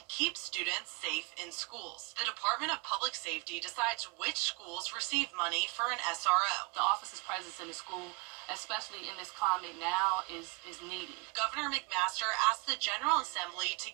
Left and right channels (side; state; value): left; quieter; 27.6 dB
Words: keep students safe in schools. The Department of Public Safety decides which schools receive money for an SRO. The officer's presence in the school, especially in this climate now, is needed. Governor McMaster asked the General Assembly to